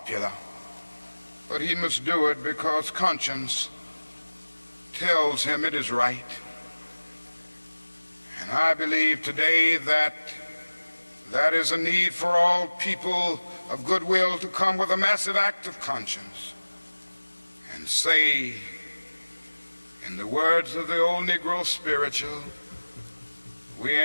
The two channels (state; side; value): inverted; both; correlation -1.00